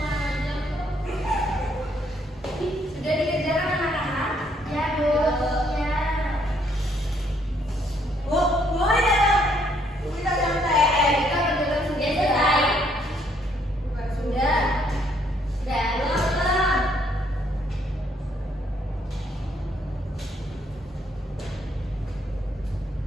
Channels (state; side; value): normal; both; correlation 0.69